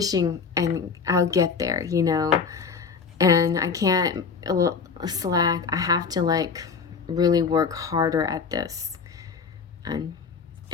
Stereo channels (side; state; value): right; quieter; 5.5 dB